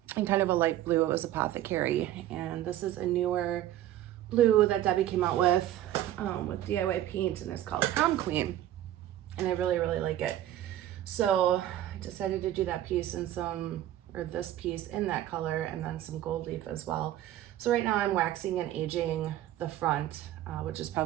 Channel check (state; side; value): quieter; left; 12.9 dB